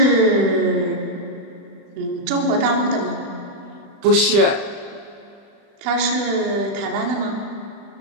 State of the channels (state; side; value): late; left; 35 ms